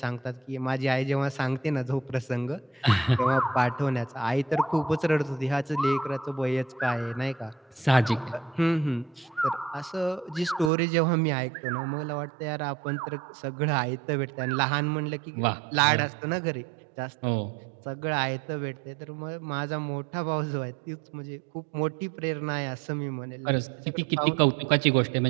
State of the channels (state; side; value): drops out; left; at 10.7 s